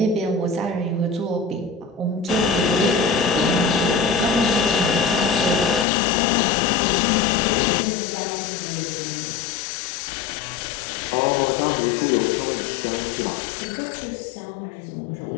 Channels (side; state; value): right; drops out; at 5.9 s